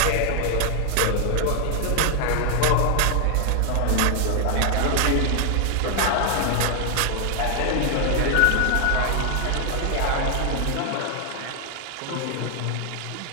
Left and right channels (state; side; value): different; both; correlation 0.00